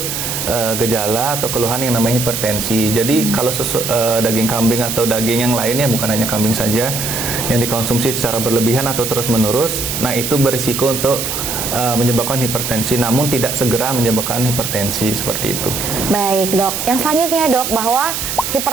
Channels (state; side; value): noise; right; hiss, 3 dB below the sound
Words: gejala atau keluhan yang namanya hipertensi. Jadi kalau daging kambing atau daging yang lainnya, bukan hanya kambing saja, yang dikonsumsi secara berlebihan atau terus-menerus, nah itu berisiko untuk menyebabkan hipertensi, namun tidak segera menyebabkan hipertensi seperti itu. Baik dok, yang selanjutnya dok, bahwa